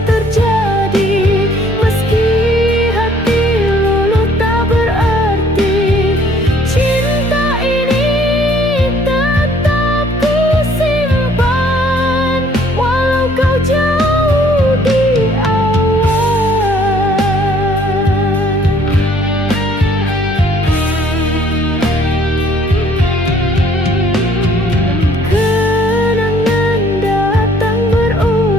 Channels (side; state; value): both; normal; correlation 0.60